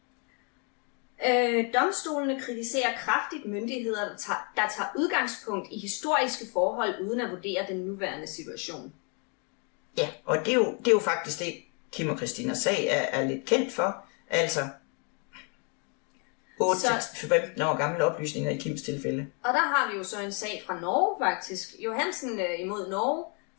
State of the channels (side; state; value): right; quieter; 36.9 dB